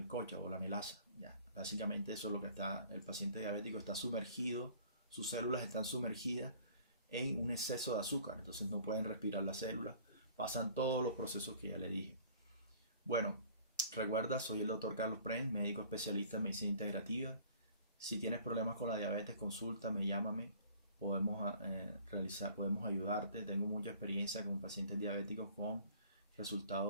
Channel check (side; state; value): both; inverted; correlation -0.51